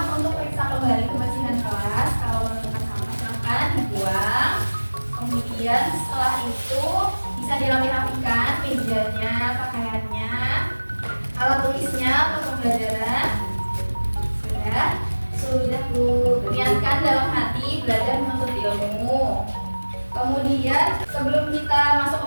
untuk periksa kembali kebersihan kelas. Kalau menemukan sampah silakan dibuang. Kemudian setelah itu bisa dirapi-rapikan mejanya, pakaiannya, alat tulisnya untuk pembelajaran. Sudah Bu. Niatkan dalam hati belajar menuntut ilmu. Kemudian sebelum kita masuk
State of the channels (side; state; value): both; inverted; correlation -1.00